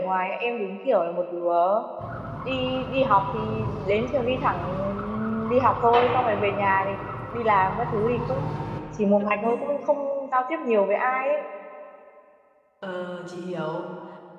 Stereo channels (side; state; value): both; identical; correlation 1.00